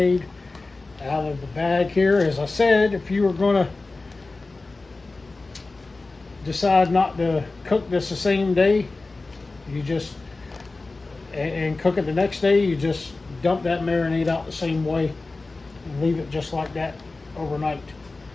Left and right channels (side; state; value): right; quieter; 3.5 dB